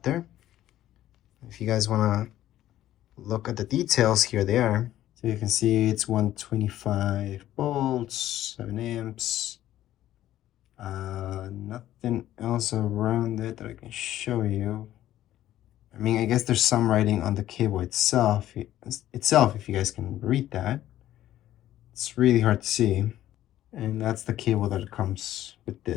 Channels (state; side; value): quieter; right; 13.2 dB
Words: If you guys want to look at the details, here they are. So you can see it's 125 volts, 7 amps. Nothing else around it that I can show you. I mean, I guess there's some writing on the cable itself, if you guys can read that. It's really hard to see. And that's the cable that comes with